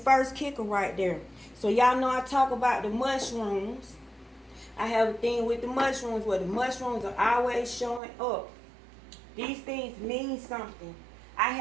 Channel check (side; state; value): left; drops out; at 8.0 s